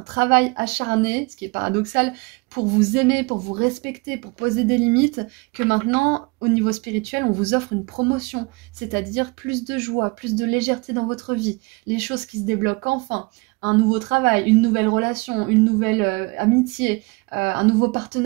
acharné, ce qui est paradoxal, pour vous aimer, pour vous respecter, pour poser des limites, que maintenant, au niveau spirituel, on vous offre une promotion, c'est-à-dire plus de joie, plus de légèreté dans votre vie, les choses qui se débloquent enfin, un nouveau travail, une nouvelle relation, une nouvelle amitié, un nouveau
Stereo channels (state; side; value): quieter; left; 27.1 dB